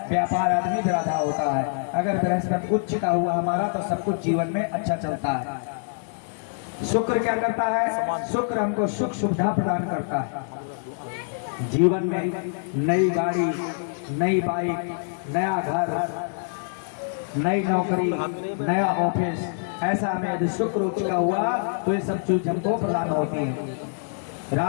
व्यापार आदमी भी बाधा होता है। अगर बृहस्पति उच्च का हुआ हमारा तो सब कुछ जीवन में अच्छा चलता है। शुक्र क्या करता है? शुक्र हमको सुख सुविधा प्रदान करता है। जीवन में नई गाड़ी, नई बाइक, नया घर, नई नौकरी, नया ऑफिस, ऐसा हमें यदि शुक्र उच्च का हुआ तो ये सब चीज हमको प्रदान होती है।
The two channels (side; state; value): right; silent; digital silence